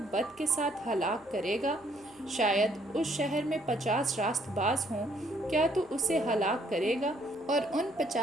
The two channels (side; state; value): left; noise; hum, 29 dB below the sound